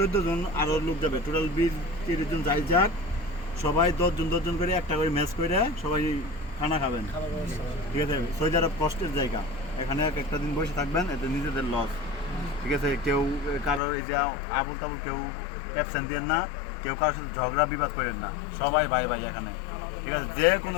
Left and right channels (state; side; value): drops out; right; at 13.8 s